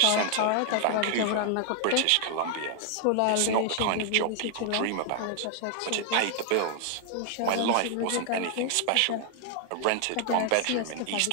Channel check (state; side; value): different; both; correlation 0.00